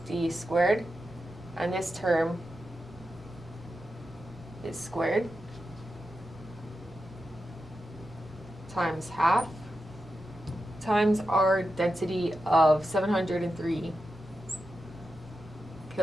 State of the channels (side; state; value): right; noise; rumble, 23 dB below the sound